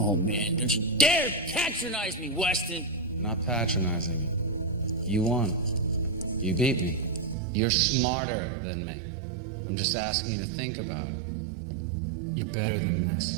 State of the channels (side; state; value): left; drops out; at 7.4 s